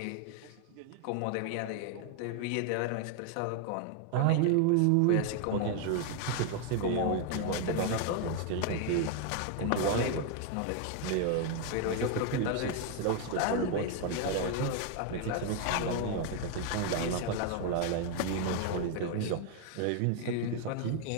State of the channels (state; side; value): different; both; correlation 0.01